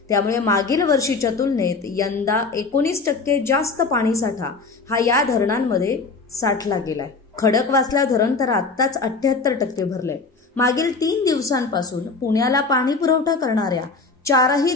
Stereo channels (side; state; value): right; quieter; 4.2 dB